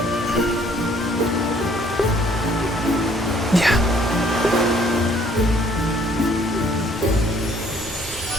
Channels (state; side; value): normal; both; correlation 0.61